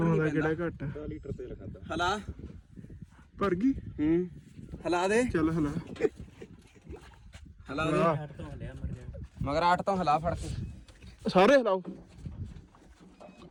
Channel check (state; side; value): identical; both; correlation 1.00